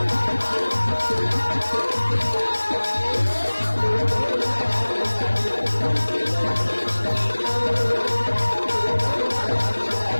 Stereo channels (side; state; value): both; inverted; correlation -1.00